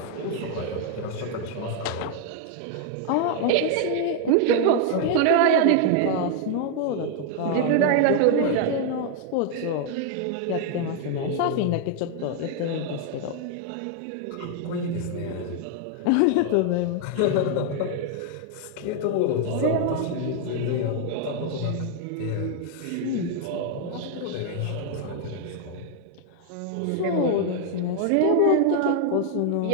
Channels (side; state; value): both; different; correlation 0.00